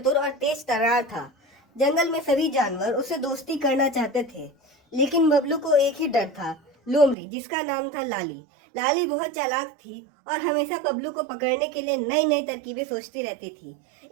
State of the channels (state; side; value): drops out; left; at 7.2 s